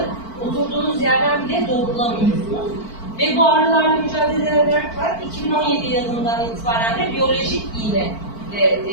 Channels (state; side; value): late; right; 4.5 ms